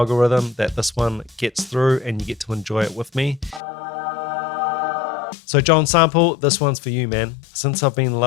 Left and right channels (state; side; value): drops out; right; at 3.6 s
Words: that this one gets through and you get to enjoy it with me. So John Sample, this one's for you, man. Since I've Been